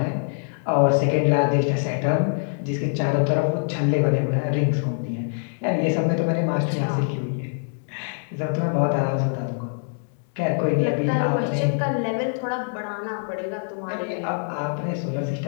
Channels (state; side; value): silent; right; digital silence